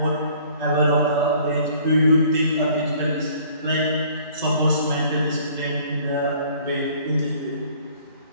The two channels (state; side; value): inverted; both; correlation -0.55